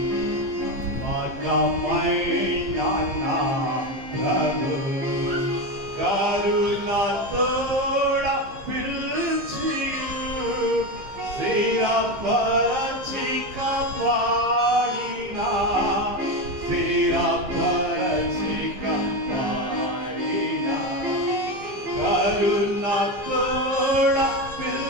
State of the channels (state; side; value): late; left; 15 ms